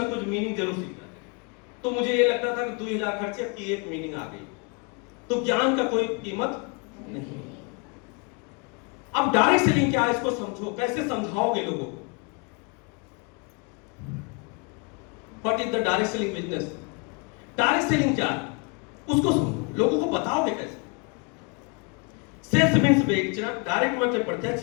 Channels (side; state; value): right; quieter; 33.4 dB